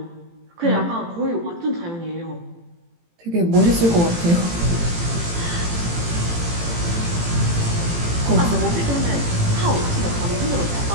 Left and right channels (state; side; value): late; left; 18 ms